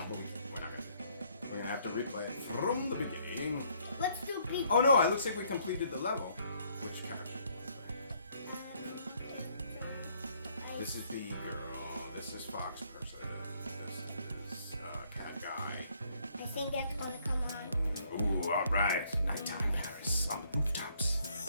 but we're not gonna do it. We're gonna have to replay it from the beginning. Let's do B. Oh no, it looks like we completed the level. Which character? This is Bee Girl. This is Fox Person. This is Cat Guy. I think that's gonna come on. Ooh, alright. Nighttime Paris on the rooftops.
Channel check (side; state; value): both; inverted; correlation -0.67